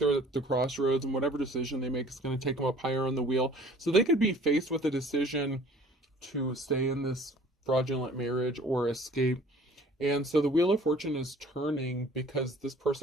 at the crossroads, and whatever decision they make is going to take them up higher on the wheel. So they could be faced with a decision to stay in this fraudulent marriage or escape. And so the Wheel of Fortune is turning because this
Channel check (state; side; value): normal; both; correlation 0.51